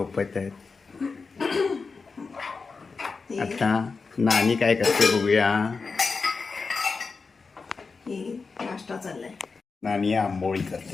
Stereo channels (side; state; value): right; quieter; 4.6 dB